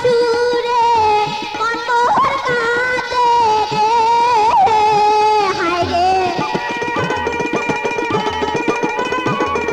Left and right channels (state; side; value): identical; both; correlation 1.00